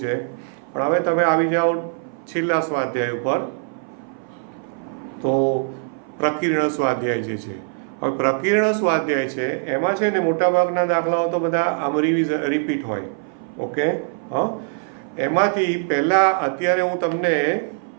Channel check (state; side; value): silent; left; 58 dB below the other